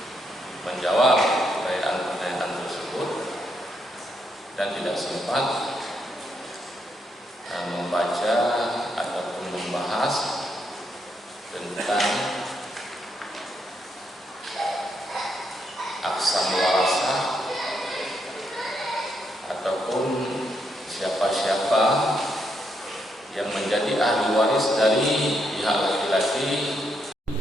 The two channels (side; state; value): both; normal; correlation 0.78